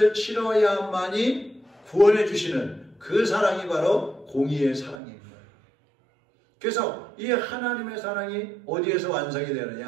치러야만이 구원해 주시는 그 사랑이 바로 공의의 사랑인 거예요. 그래서 이 하나님의 사랑이 어디에서 완성이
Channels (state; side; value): drops out; left; at 5.0 s